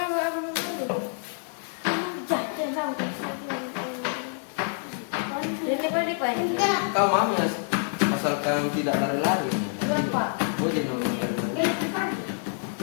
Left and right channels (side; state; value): right; silent; 60 dB below the other